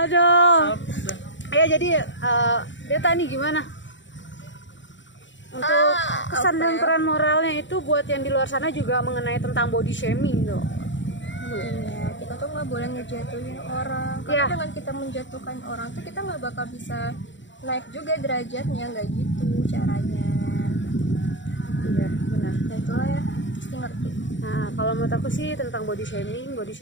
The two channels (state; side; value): late; right; 0.54 ms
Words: Salpuk dah. Ya jadi Deta nih gimana? Untuk kesan dan peran moralnya itu buat yang di luar sana juga mengenai tentang body shaming tuh. Iya, kita tuh nggak boleh ngejatuhin orang. Karena Iya. dengan kita menjatuhkan orang tuh kita nggak bakal bisa naik juga derajatnya, nggak gitu caranya. Iya, benar. Nah itulah ya, pasti ngerti. Nah, kalau menurut aku sih tentang body shaming